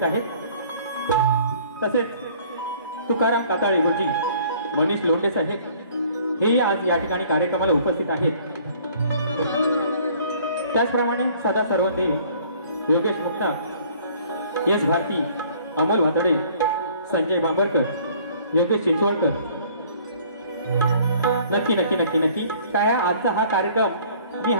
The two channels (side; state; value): both; inverted; correlation -0.55